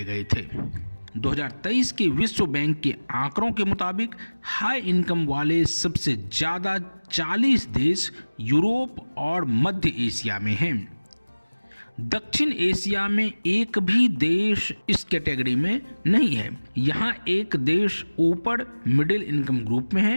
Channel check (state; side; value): inverted; both; correlation -1.00